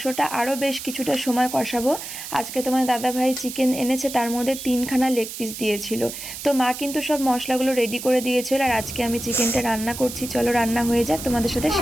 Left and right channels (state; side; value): noise; right; hiss, 9 dB below the sound